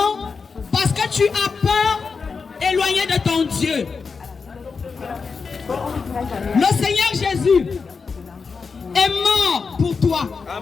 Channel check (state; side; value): quieter; right; 5.0 dB